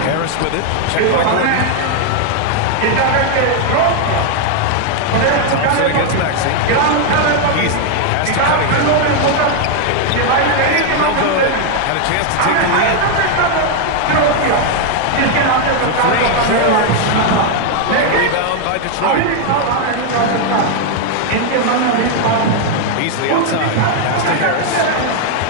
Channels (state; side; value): different; both; correlation 0.00